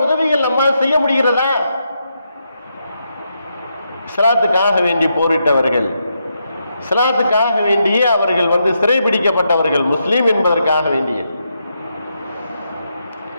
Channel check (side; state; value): both; inverted; correlation -0.82